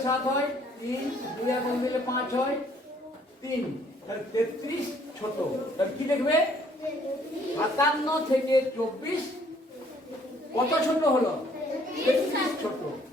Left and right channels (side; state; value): both; normal; correlation 0.62